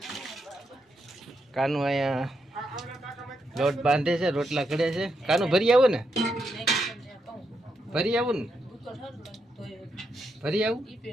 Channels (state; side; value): normal; both; correlation 0.82